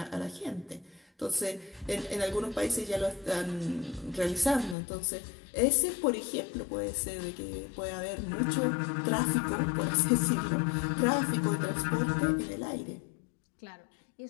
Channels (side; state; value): right; drops out; at 4.8 s